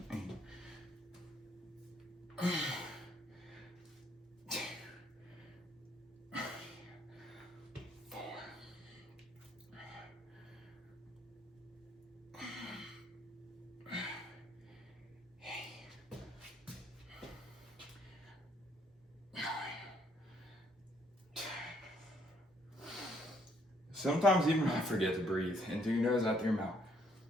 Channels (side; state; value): both; normal; correlation 0.68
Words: 8. 2, 4. 9, 10. Sometimes even I forget to breathe in through your nose, out through your mouth.